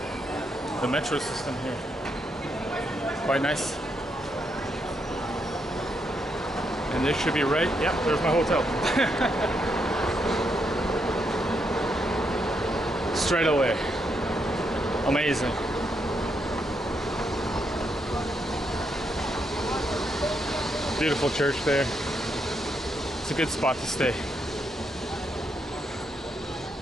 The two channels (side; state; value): both; normal; correlation 0.79